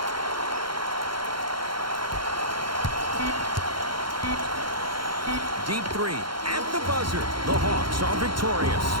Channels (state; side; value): late; left; 0.73 ms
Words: Deep three at the buzzer. The Hawks are victorious.